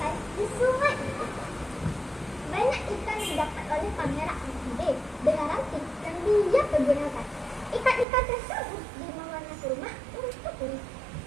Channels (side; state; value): left; drops out; at 8.1 s